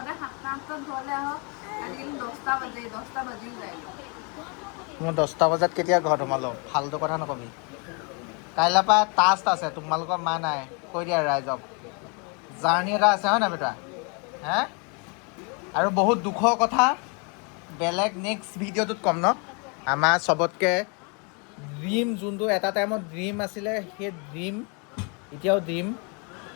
7টা 8টাত ঘৰলৈ আহক আজিকালি 10টা বাজেই 10টা বাজিও যায় মই 10টা বজাত কেতিয়া ঘৰত সোমালো ফাল্টু কথা নকবি কাইলৈৰ পৰা টাস্ক আছে তোমালোকৰ মা নাই কৈ দিয়া ৰাইজক জাৰ্ণি এটা আছে হয় নাই বেটা হে আৰু বহুত দুখৰ কথা বেলেগ নেক্সট ভিডিঅ'টোত ক'ম ন আমাৰ চবতকৈ ড্ৰিম যোনটো এটা টাইমত ড্ৰিম আছিলে সেই ড্ৰিম এতিয়াও ড্ৰিম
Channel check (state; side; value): quieter; right; 34.5 dB